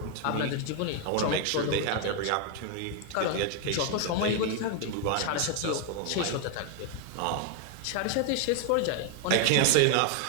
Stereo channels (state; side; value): different; both; correlation 0.01